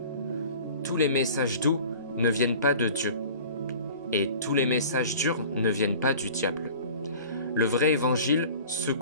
Tous les messages doux ne viennent pas de Dieu, et tous les messages durs ne viennent pas du diable. Le vrai évangile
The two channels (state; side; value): inverted; both; correlation -0.43